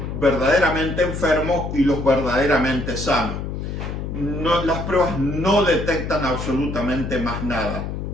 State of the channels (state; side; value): noise; left; hum, 5 dB below the sound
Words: verdaderamente enfermos y los verdaderamente sanos. Las pruebas no detectan absolutamente más nada.